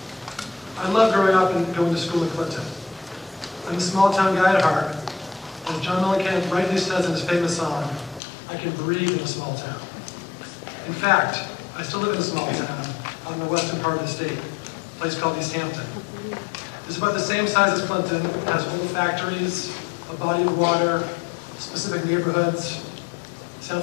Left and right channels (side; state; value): right; drops out; at 8.2 s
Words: I love growing up and going to school in Clinton. I'm a small town guy at heart. As John Mellencamp rightly says in his famous song, I can breathe in a small town. In fact, I still live in a small town out in the western part of the state, a place called East Hampton. It's about the same size as Clinton. It has old factories, a body of water, specific neighborhoods. Sound